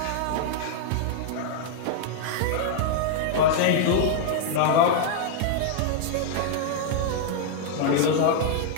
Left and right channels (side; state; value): both; different; correlation -0.01